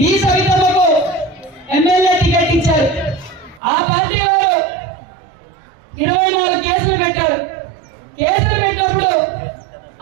ఈ సవితమ్మకు ఎమ్మెల్యే టికెట్ ఇచ్చారు. ఆ పార్టీ వారు 24 కేసులు పెట్టారు. కేసులు పెట్టినప్పుడు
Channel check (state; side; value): drops out; left; at 3.6 s